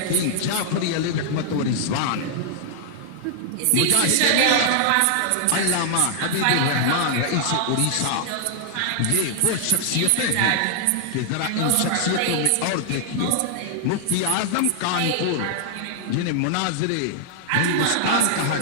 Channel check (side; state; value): both; different; correlation -0.01